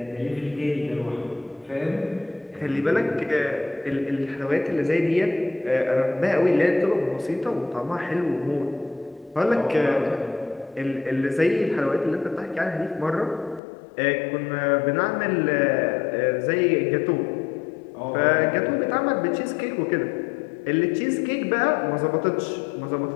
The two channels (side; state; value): right; drops out; at 13.6 s